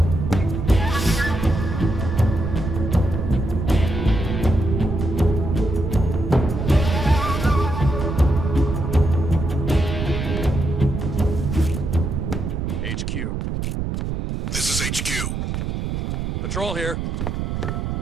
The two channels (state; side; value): noise; right; rumble, 3 dB below the sound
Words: HQ. This is HQ. Patrol here.